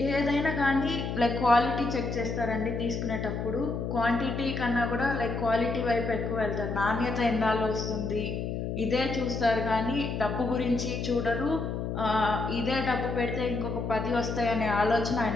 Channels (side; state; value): left; noise; hum, 3 dB below the sound